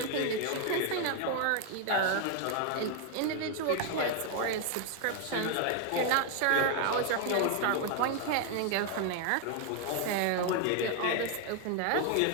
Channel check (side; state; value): both; different; correlation 0.00